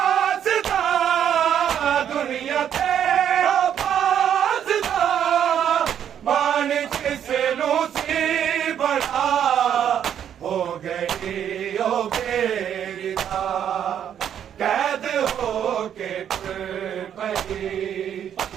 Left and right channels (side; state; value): left; quieter; 9.3 dB